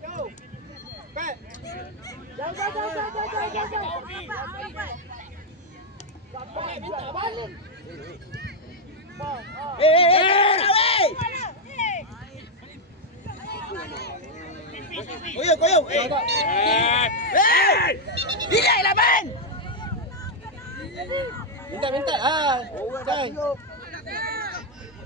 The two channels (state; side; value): normal; both; correlation 0.00